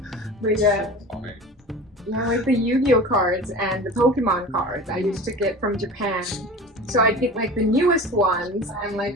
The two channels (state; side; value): normal; both; correlation 0.36